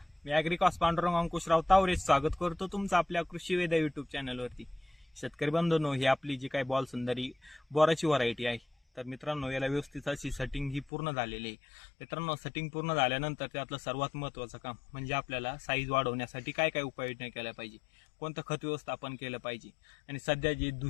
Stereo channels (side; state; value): right; drops out; at 10.9 s